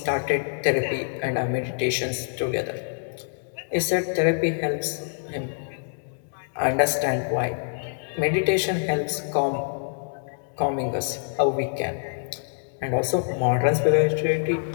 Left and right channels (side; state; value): right; silent; 61 dB below the other